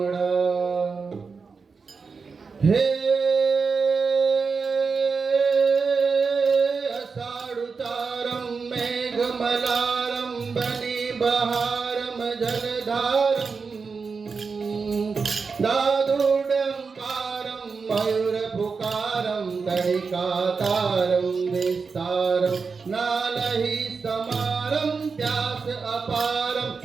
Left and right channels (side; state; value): left; quieter; 5.0 dB